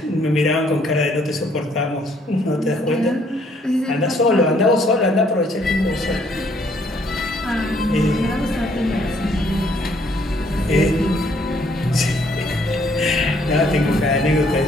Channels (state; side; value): normal; both; correlation 0.65